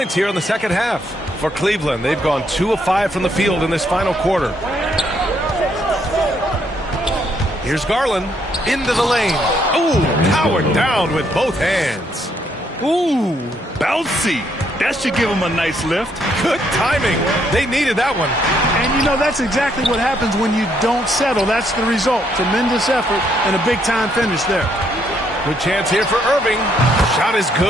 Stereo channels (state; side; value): normal; both; correlation 0.72